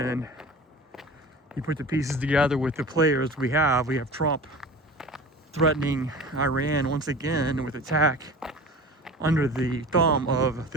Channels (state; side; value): normal; both; correlation 0.37